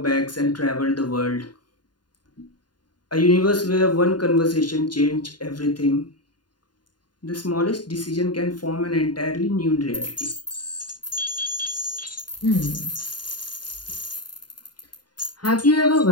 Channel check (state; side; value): late; right; 0.70 ms